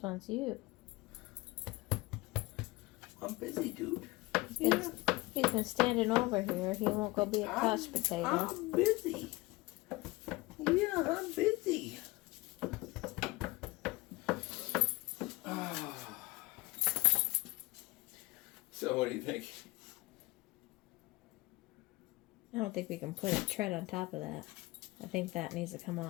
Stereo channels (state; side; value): quieter; right; 21.9 dB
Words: wants you. I'm busy, dude. He's been standing over here. He won't go be a couch potato. I'm busy. Yeah, I'm busy. So what do you think? I don't think we can put a tread on top of that. I think that needs to come